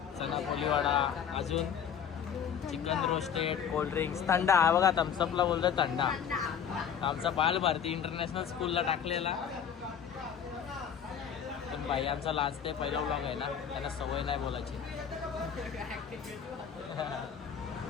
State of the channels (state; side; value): quieter; right; 7.9 dB